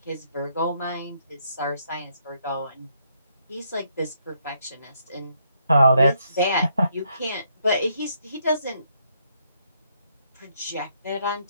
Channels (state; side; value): inverted; both; correlation -0.73